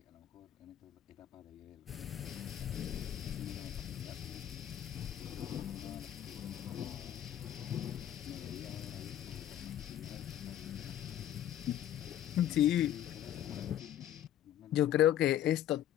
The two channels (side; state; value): right; quieter; 11.3 dB